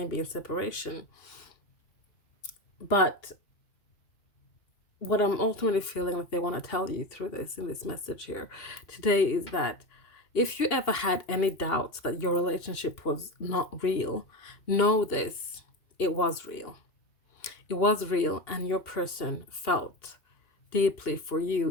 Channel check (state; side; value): late; right; 2.8 ms